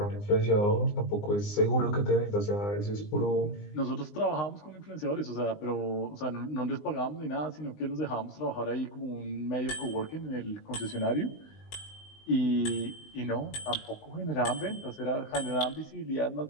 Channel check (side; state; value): right; late; 20 ms